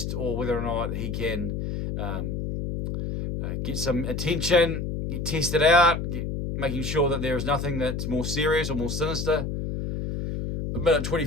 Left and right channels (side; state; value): left; noise; hum, 3 dB below the sound